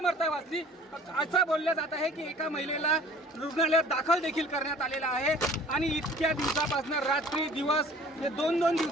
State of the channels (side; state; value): both; normal; correlation 0.50